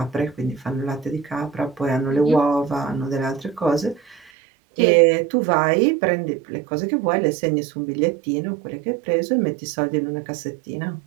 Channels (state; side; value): drops out; left; at 4.3 s